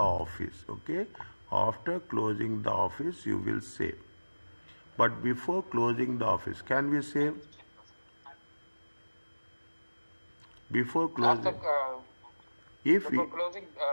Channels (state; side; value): inverted; both; correlation -1.00